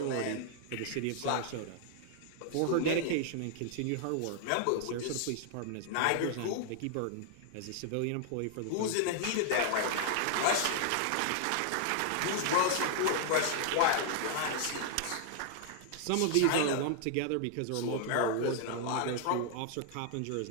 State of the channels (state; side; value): different; both; correlation 0.00